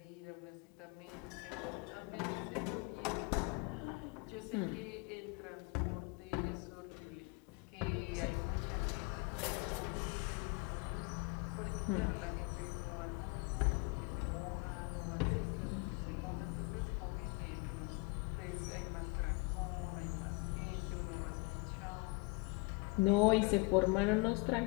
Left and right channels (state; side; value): quieter; right; 28.9 dB